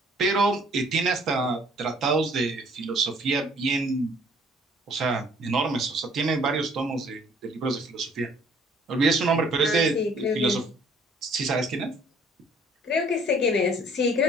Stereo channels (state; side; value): normal; both; correlation 0.58